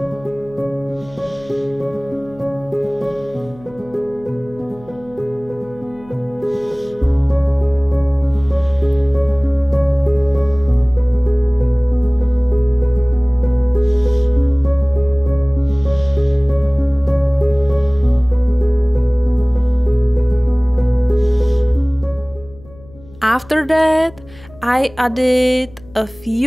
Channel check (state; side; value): noise; left; hum, 23 dB below the sound